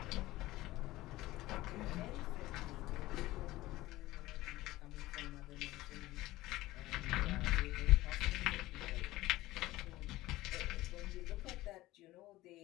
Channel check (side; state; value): right; quieter; 17.5 dB